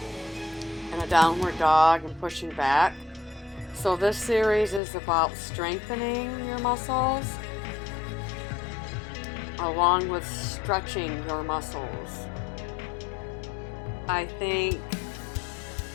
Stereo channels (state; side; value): drops out; right; at 4.8 s